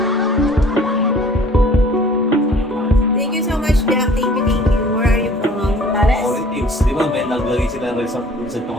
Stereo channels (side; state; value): both; normal; correlation 0.51